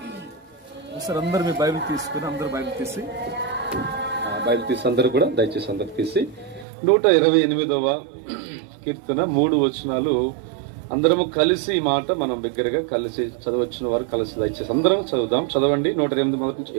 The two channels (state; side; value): drops out; left; at 6.7 s